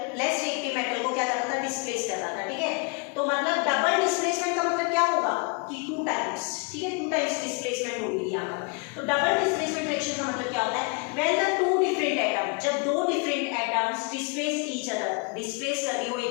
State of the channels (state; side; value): quieter; right; 32.9 dB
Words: less reactive metal को क्या कर रहा था? डिस्प्लेस कर रहा था। ठीक है, तो मतलब डबल डिस्प्लेसमेंट का मतलब क्या होगा कि 2 टाइम्स। ठीक है, 2 टाइम्स डिस्प्लेसमेंट होगी यहाँ पर। तो डबल डिस्प्लेसमेंट रिएक्शन का मतलब क्या होता है? व्हेन द 2 डिफरेंट एटम, जब 2 different atoms displace each other, displace कर रही हो